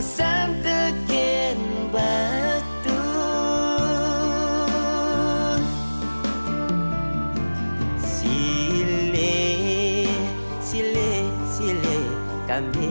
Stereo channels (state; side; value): inverted; both; correlation -1.00